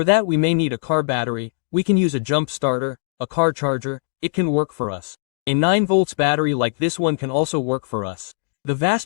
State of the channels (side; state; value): right; silent; digital silence